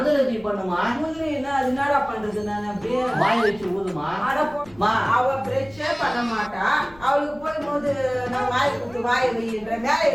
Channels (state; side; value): noise; left; rumble, 24 dB below the sound